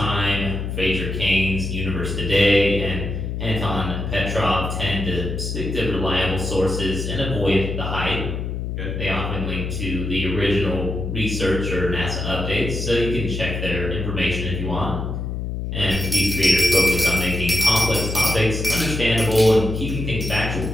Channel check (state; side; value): noise; left; hum, 4 dB below the sound